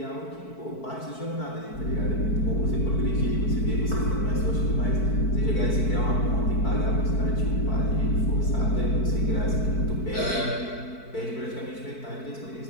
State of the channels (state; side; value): late; right; 4.5 ms